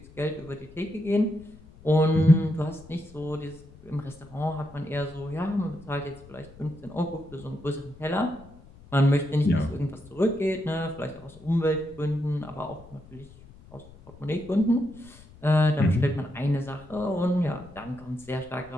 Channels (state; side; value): noise; left; rumble, 21 dB below the sound